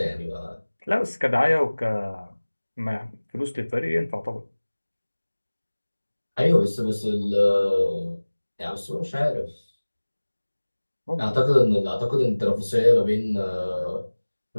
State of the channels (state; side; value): inverted; both; correlation -1.00